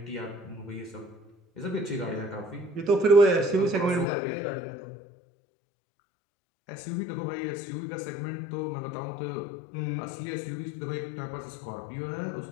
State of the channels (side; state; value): right; drops out; at 4.0 s